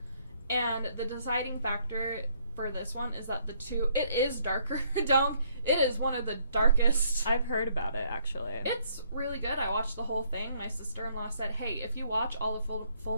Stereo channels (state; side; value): inverted; both; correlation -0.67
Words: And the deciding factor for this one is that it is darker. It is one of the darkest. I've heard about it, actually. It's really good. I watched the whole thing. My sister-in-law said, hey, if you watch all of Full